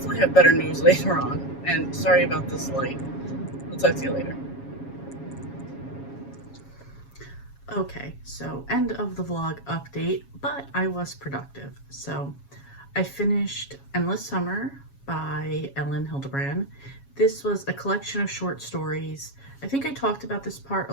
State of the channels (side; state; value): right; late; 7.3 ms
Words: have better news later on. And sorry about this light. I'll talk to you later. Okay, so end of the vlog update, but I was productive. So I finished Endless Summer by Ellen Hildebrand. This was a collection of short stories. I think I talked about this part a